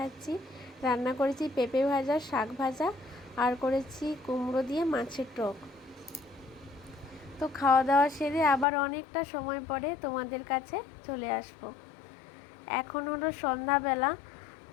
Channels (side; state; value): right; drops out; at 8.7 s